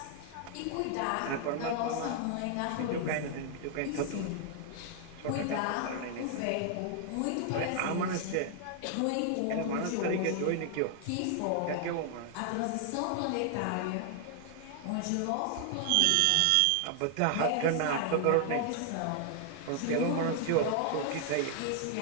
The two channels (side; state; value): both; different; correlation 0.00